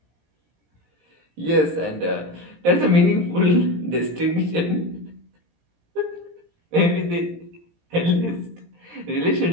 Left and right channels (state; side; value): late; left; 17 ms